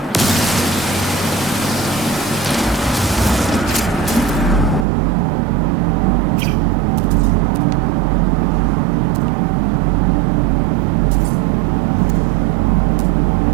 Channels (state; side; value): drops out; left; at 4.9 s